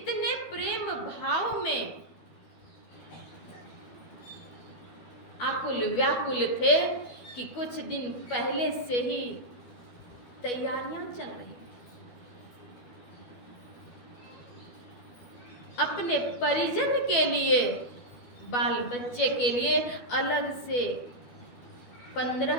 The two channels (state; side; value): late; right; 12 ms